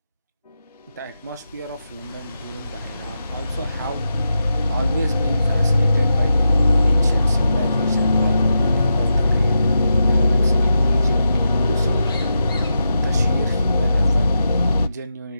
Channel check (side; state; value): both; inverted; correlation -0.88